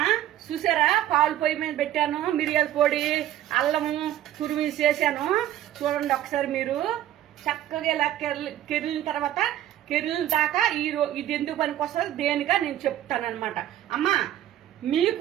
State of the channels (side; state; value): left; quieter; 12.5 dB